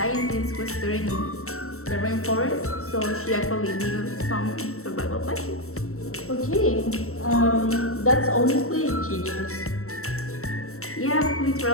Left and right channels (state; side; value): late; right; 0.63 ms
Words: who studied in the rainforest, so she actually knew some survival techniques. Okay, that's honestly genius. Yeah,